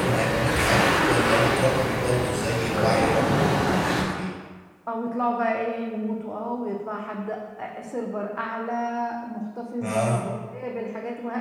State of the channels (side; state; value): both; identical; correlation 1.00